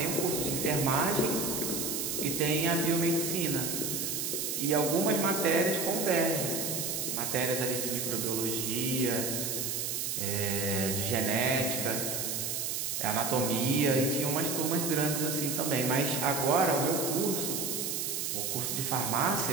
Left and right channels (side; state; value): right; noise; hiss, 1 dB below the sound